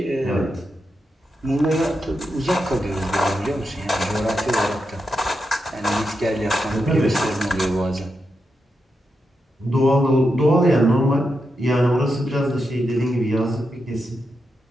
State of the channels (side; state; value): both; normal; correlation 0.86